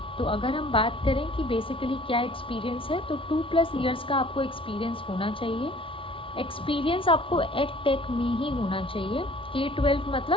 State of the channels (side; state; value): right; late; 0.25 ms